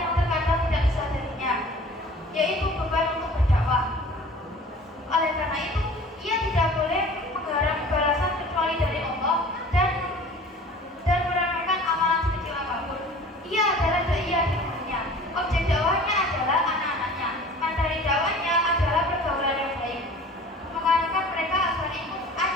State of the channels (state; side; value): normal; both; correlation 0.45